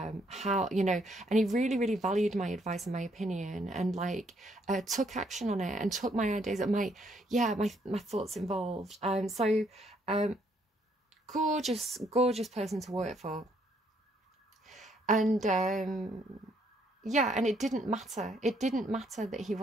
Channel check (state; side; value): normal; both; correlation 0.70